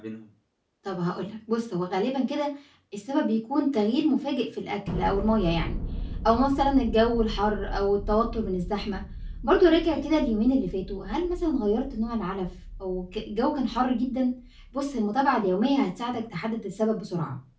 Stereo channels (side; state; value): both; identical; correlation 1.00